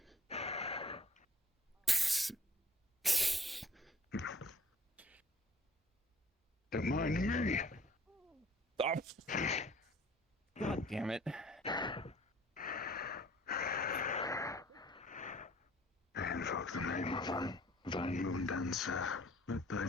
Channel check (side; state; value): both; normal; correlation 0.54